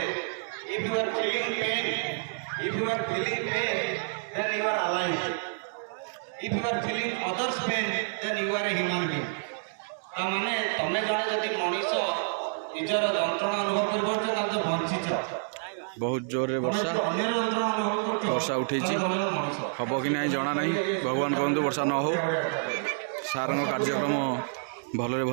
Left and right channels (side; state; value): left; silent; digital silence